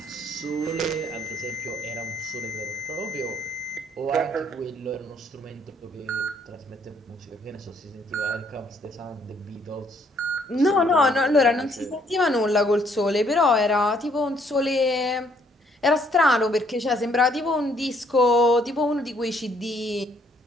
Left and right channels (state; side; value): normal; both; correlation 0.67